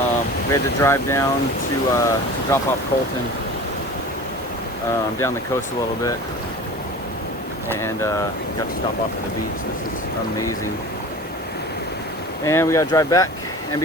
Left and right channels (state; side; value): normal; both; correlation 0.37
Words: We had to drive down to drop off Colton down the coast a little bit, and got to stop off at the beach. This is amazing. And we got to drive back and